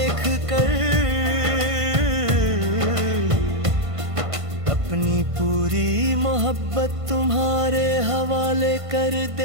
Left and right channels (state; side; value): late; left; 1.5 ms